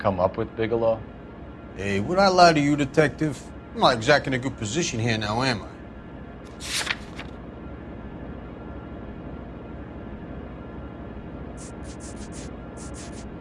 up with, Bigelow? Hey, would I lie to you, detective? I'm not exactly in a good position here now, am I?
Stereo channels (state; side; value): identical; both; correlation 1.00